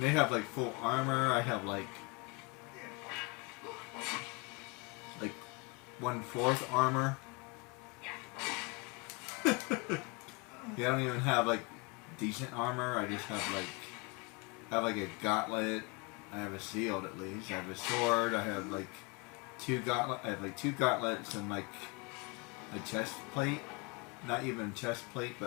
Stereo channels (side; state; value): right; quieter; 27.9 dB